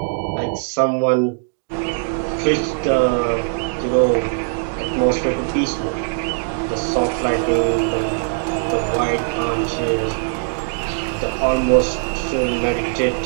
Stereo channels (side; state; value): left; silent; digital silence